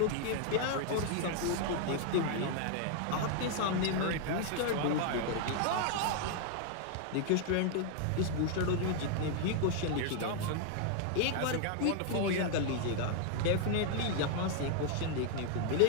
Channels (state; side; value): different; both; correlation 0.00